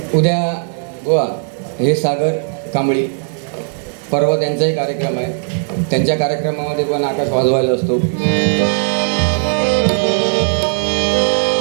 उद्या गोवा हे सागर कांबळी, परवा त्यांचाही कार्यक्रम आहे. त्यांच्या कार्यक्रमामध्ये पण आकाश वाजवायला असतो.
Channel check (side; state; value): left; silent; 69 dB below the other